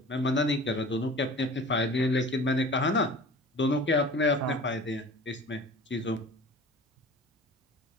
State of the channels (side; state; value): both; normal; correlation 0.42